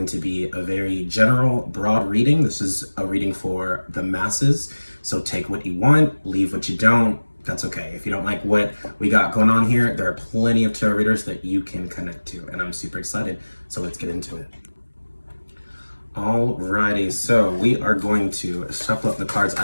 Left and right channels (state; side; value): inverted; both; correlation -1.00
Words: to be a very general, broad reading. This is a reading for the masses, so take what you want, leave what you don't. That's okay. If you don't like what we got going on here, there are plenty of tarot readers that you can connect to, and I'm super excited. So let's get into it. Alrighty, so we are going to shuffle up the cards.